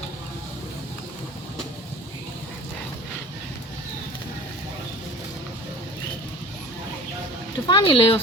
একটু পানি লইও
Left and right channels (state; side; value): normal; both; correlation 0.41